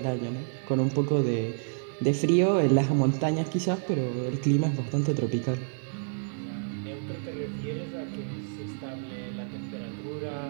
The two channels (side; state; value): left; silent; digital silence